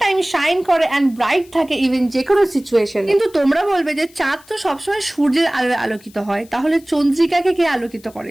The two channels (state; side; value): noise; left; hiss, 26 dB below the sound